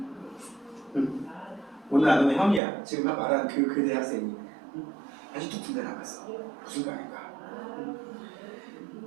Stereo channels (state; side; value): drops out; left; at 2.6 s